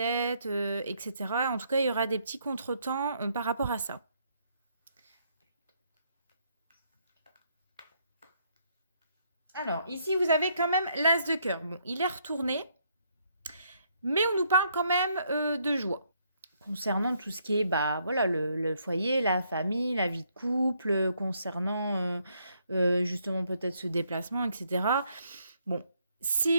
etc. En tout cas, il y aura des petits contretemps par rapport à ça. Alors, ici, vous avez quand même l'as de cœur. Bon, il est retourné, mais on nous parle quand même de joie. Concernant tout ce qui est, bah, voilà, le foyer, la famille, la vie de couple, concernant justement peut-être ce déplacement, etc. Bon,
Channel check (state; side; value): inverted; both; correlation -0.72